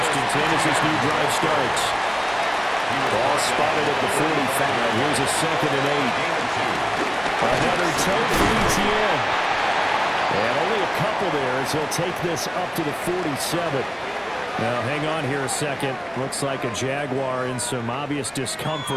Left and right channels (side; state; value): both; identical; correlation 1.00